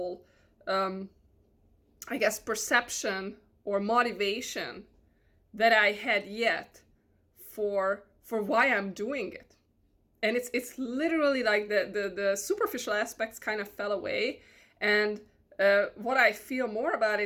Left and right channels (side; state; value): both; identical; correlation 1.00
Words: I guess, perception or motivation that I had yet for why I'm doing it. And it's literally like the superficial aspects kind of fell away. And what I feel more about